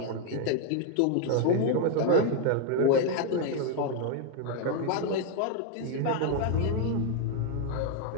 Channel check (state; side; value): different; both; correlation 0.01